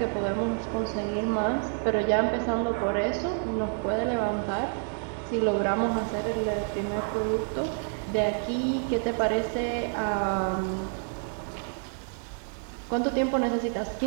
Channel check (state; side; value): silent; left; 59 dB below the other